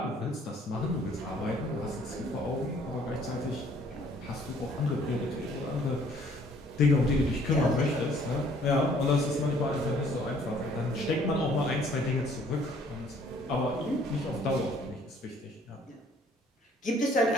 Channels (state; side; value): normal; both; correlation 0.59